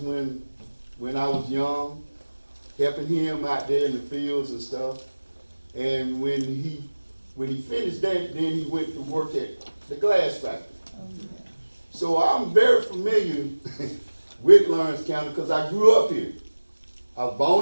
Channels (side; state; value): both; inverted; correlation -1.00